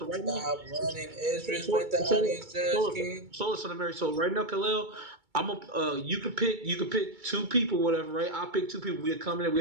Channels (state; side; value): late; left; 2.3 ms